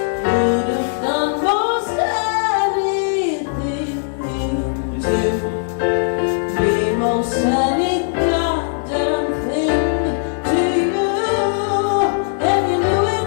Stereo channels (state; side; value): silent; right; digital silence